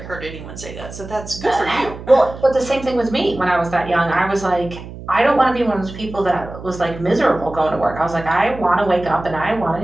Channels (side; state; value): right; noise; hum, 13 dB below the sound